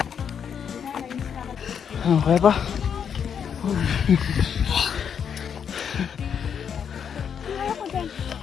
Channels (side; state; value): right; quieter; 7.6 dB